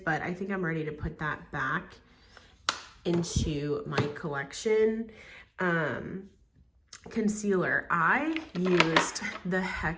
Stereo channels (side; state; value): both; identical; correlation 1.00